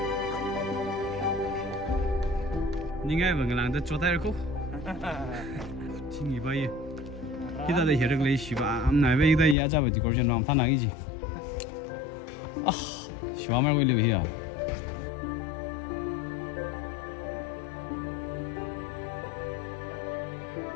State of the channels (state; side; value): drops out; right; at 9.6 s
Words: Những cái mà người làm được cho tay được không? Chính vì vậy. Khi ta để hiểu được lấy xí ba, hôm nay bây giờ giờ ra về thì có chuyện làm thằng nào cái gì? 시와 말고 일려 해야.